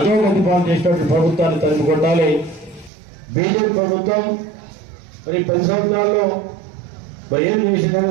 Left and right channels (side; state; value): left; drops out; at 2.9 s